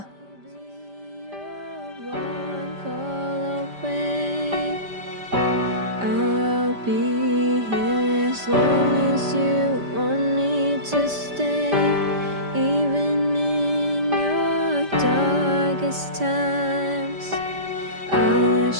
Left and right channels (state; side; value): late; left; 5.1 ms